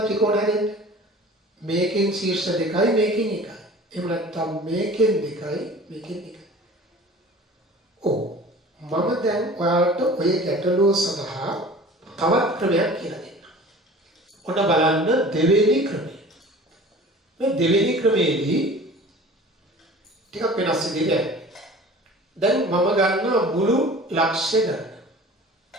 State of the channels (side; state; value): both; normal; correlation 0.43